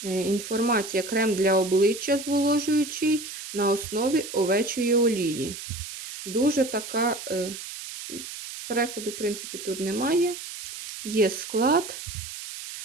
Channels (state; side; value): noise; right; hiss, 10 dB below the sound